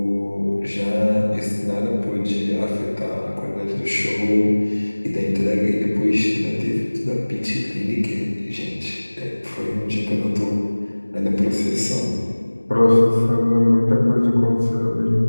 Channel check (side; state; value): both; inverted; correlation -1.00